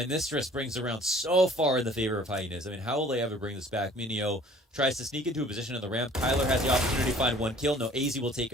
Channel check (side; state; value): both; normal; correlation 0.52